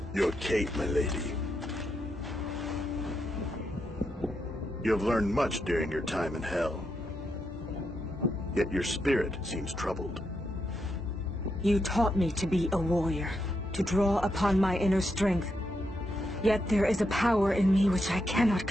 Your Kate, my lady. You have learned much during your time in hell. Yet your spirit seems troubled. You taught me to be a warrior, to draw upon my inner strength. Yet there is a power in me which I cannot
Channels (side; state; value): both; normal; correlation 0.82